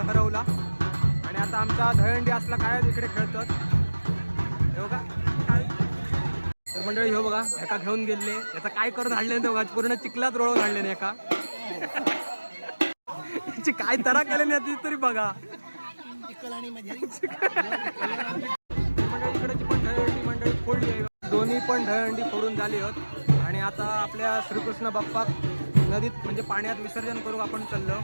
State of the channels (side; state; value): both; inverted; correlation -1.00